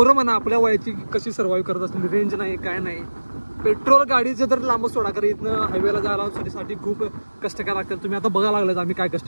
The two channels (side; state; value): both; inverted; correlation -1.00